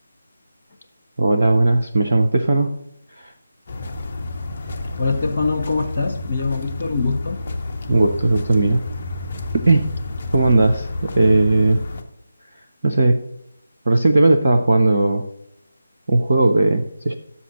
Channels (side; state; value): both; inverted; correlation -0.91